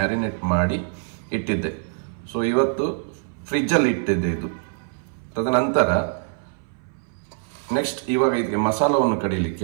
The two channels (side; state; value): left; silent; 60 dB below the other